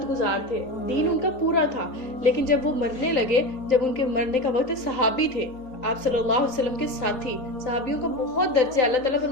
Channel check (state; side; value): late; right; 3.9 ms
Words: گزار تھے، دین ان کا پورا تھا، لیکن جب وہ مرنے لگے، جب ان کے مرنے کا وقت، صحابی تھے، آپ صلی اللہ علیہ وسلم کے ساتھی، صحابیوں کا بہت درجہ، اللہ تعالیٰ